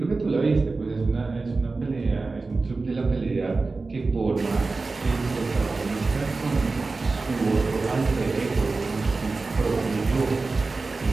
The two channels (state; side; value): quieter; left; 3.8 dB